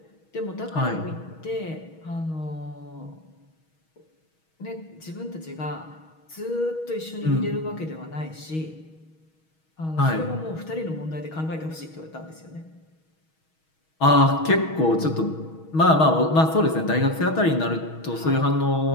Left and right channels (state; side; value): late; right; 6.3 ms